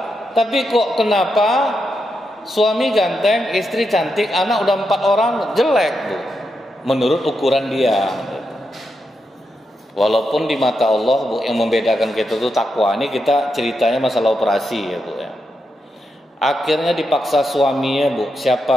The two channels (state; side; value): normal; both; correlation 0.85